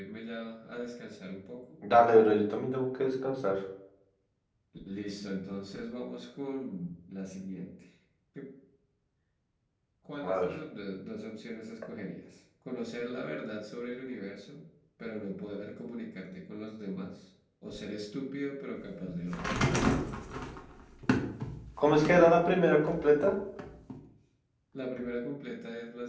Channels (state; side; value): identical; both; correlation 1.00